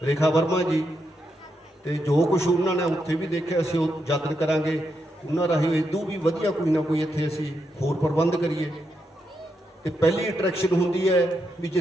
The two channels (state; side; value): normal; both; correlation 0.83